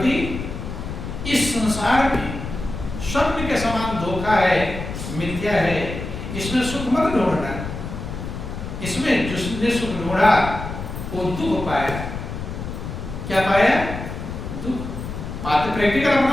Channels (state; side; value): noise; left; rumble, 7 dB below the sound